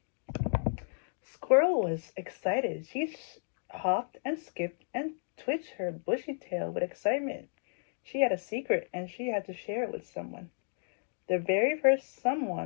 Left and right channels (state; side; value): silent; right; digital silence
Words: Squirrel was excited. She hopped and skipped and twitched her bushy tail with excitement. She had a secret and she had to share it with someone. The very first